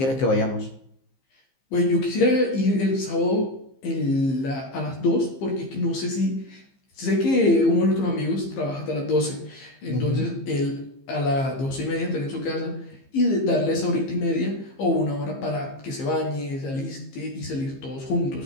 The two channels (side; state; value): right; late; 15 ms